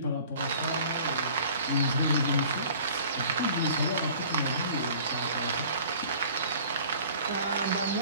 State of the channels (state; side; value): inverted; both; correlation -0.48